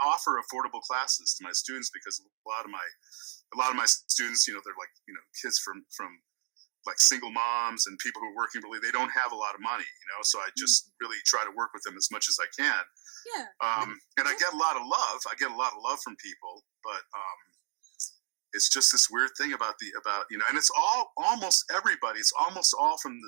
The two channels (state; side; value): silent; left; digital silence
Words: offer affordable classes to my students because a lot of my students, they're like, kids from like single moms and people who are working really, they don't have a lot of money, so I just really try to work with them as much as I can. Yeah. And I get a lot of love. I get a lot of love from people, but it's just this weird thing about and it's almost everybody. It's almost all from